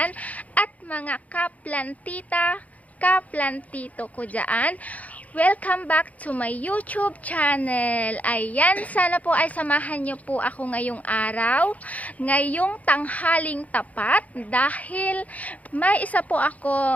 at mga kaplantita, kaplantito ko dyan. Welcome back to my YouTube channel. Ayan, sana po ay samahan nyo po ako ngayong araw, ngayong tanghaling tapat, dahil may isa po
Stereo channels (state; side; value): late; right; 0.071 ms